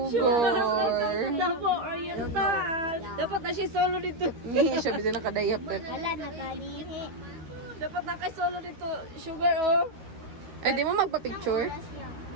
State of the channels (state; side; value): late; left; 13 ms